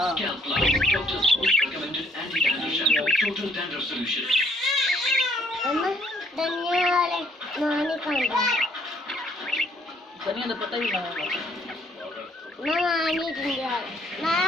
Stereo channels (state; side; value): normal; both; correlation 0.65